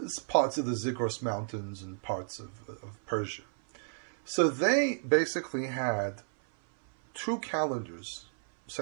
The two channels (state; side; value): silent; left; 56 dB below the other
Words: parts of the Zagros Mountains and parts of Persia. So they basically had 2 calendars